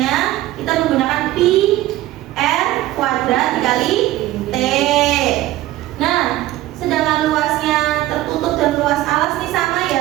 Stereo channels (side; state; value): left; quieter; 15.6 dB